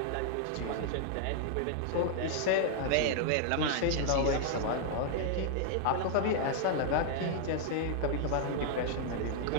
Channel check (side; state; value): both; different; correlation 0.00